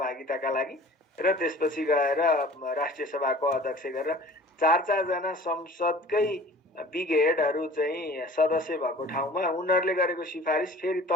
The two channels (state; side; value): normal; both; correlation 0.46